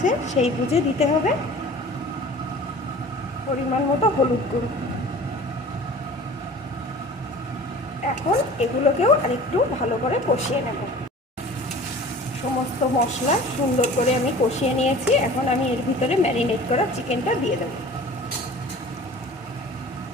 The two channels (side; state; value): both; normal; correlation 0.42